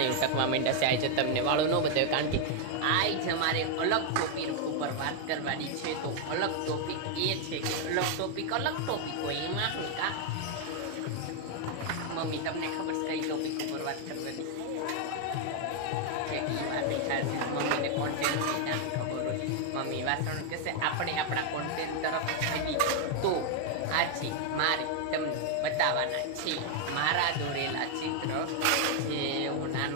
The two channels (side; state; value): both; different; correlation 0.00